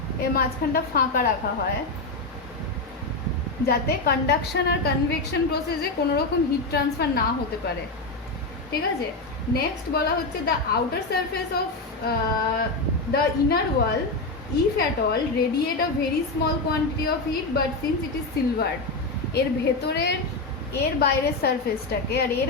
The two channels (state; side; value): quieter; right; 3.3 dB